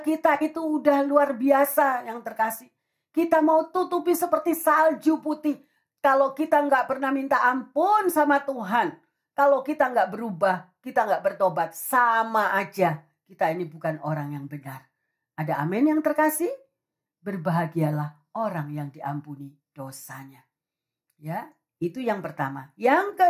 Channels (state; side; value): identical; both; correlation 1.00